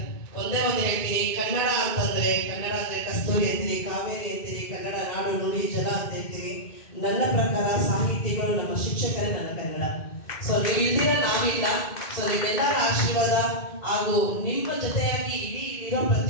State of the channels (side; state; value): right; late; 2.2 ms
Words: ಒಂದೇ ಒಂದು ಹೇಳ್ತೀನಿ, ಕನ್ನಡ ಅಂತಂದ್ರೆ ಕನ್ನಡ ಅಂದ್ರೆ ಕಸ್ತೂರಿ ಅಂತೀರಿ, ಕಾವೇರಿ ಅಂತೀರಿ, ಕನ್ನಡ ನಾಡು ನುಡಿ ಜಲ ಅಂತ ಹೇಳ್ತೀರಿ. ನನ್ನ ಪ್ರಕಾರ ಸಾಹಿತಿಗಳು ನಮ್ಮ ಶಿಕ್ಷಕರೇ ನನ್ನ ಕನ್ನಡ. ಸೊ ನೀವು ಇಲ್ದಿರ ನಾವಿಲ್ಲ. ಸೊ ನಿಮ್ಮೆಲ್ಲರ ಆಶೀರ್ವಾದ ಹಾಗೂ ನಿಮ್ಮ ಜೊತೆಯಾಗಿ ಇಲ್ಲಿರೋ